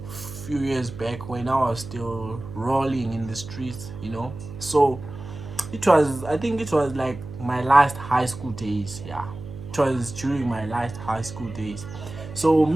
when I was still rolling in the streets, you know. So it was, I think it was like my last high school days. Yeah, it was during my last high school days. So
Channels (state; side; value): noise; right; hum, 12 dB below the sound